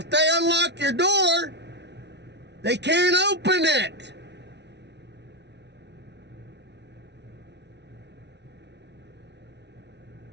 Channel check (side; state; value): left; late; 0.50 ms